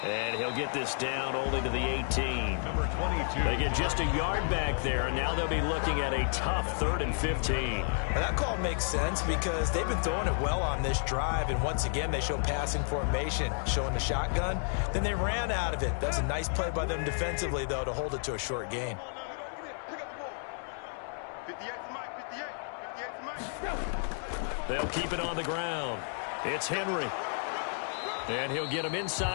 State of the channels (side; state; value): right; silent; 57 dB below the other